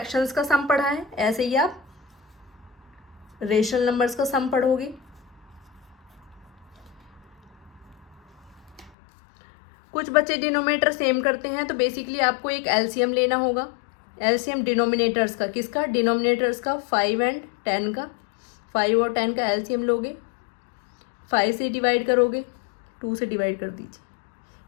का सम पढ़ा है ऐसे ही आप रेशनल नंबर्स का सम पढ़ोगे। कुछ बच्चे डिनोमिनेटर सेम करते हैं, तो बेसिकली आपको एक एलसीएम लेना होगा। एलसीएम डिनोमिनेटर्स का, किसका? डिनोमिनेटर्स का, 5 एंड 10 का। 5 और 10 का एलसीएम लोगे, 5 से डिवाइड करोगे, 2 से डिवाइड कर दीजिए,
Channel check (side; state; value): right; drops out; at 8.9 s